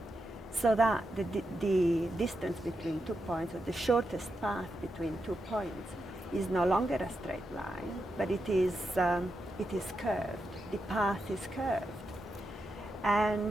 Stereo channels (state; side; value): normal; both; correlation 0.86